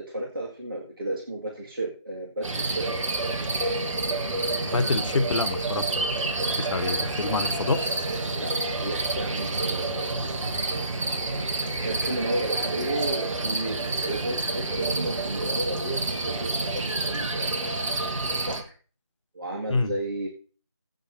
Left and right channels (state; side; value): inverted; both; correlation -0.56